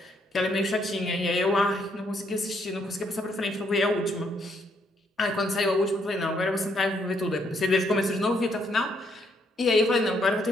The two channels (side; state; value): both; normal; correlation 0.72